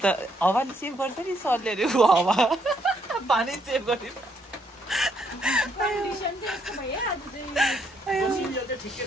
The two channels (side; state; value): both; normal; correlation 0.72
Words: त हावाले सेभ गर्छ नि सरले अरे हावा पानी सेभ गर्ने